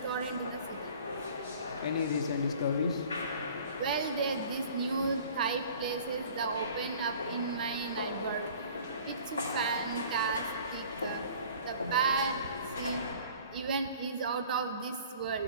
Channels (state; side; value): inverted; both; correlation -0.48